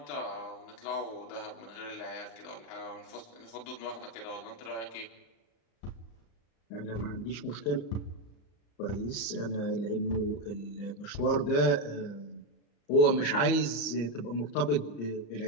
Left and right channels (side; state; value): right; late; 34 ms